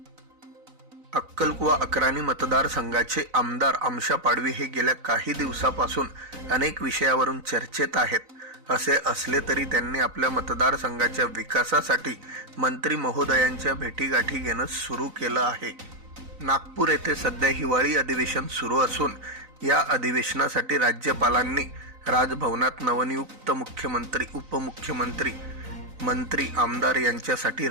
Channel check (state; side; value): late; left; 3.9 ms